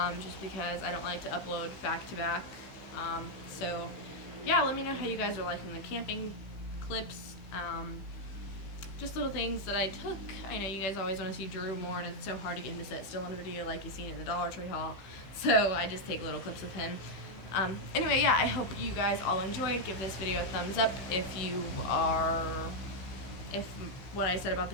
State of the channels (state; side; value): late; right; 15 ms